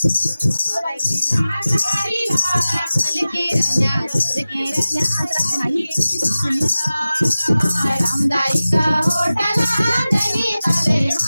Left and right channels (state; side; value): inverted; both; correlation -0.96